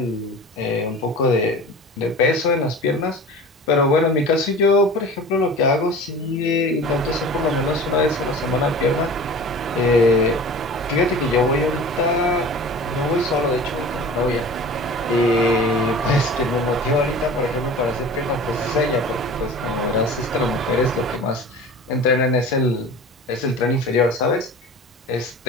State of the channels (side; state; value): both; normal; correlation 0.39